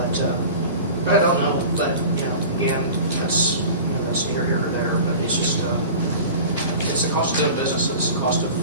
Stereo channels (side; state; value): both; inverted; correlation -0.38